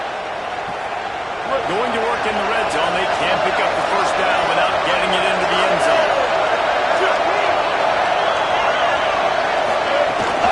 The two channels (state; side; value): identical; both; correlation 1.00